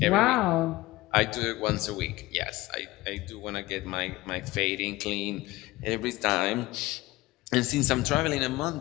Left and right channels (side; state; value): right; quieter; 19.3 dB